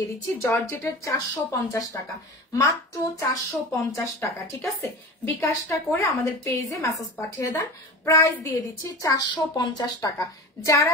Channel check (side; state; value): both; normal; correlation 0.32